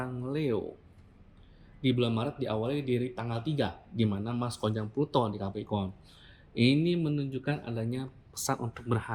Leo, di bulan Maret diawali dari tanggal 3, di mana Mars konjung Pluto di Capricorn. Ini menunjukkan adanya pesan untuk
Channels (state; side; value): identical; both; correlation 1.00